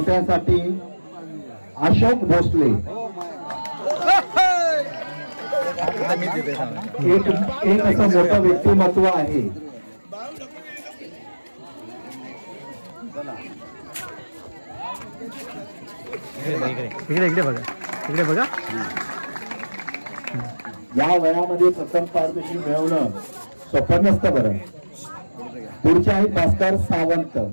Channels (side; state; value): both; inverted; correlation -1.00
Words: अशोक भोसले. एक असं मोठं व्यक्तिमत्व आहे. इकडे बघा. या वयामध्ये प्रथम पारितोषिक मिळवणं सोपं नसतं बरं. पुढचे आहेत भास्कर सावंत.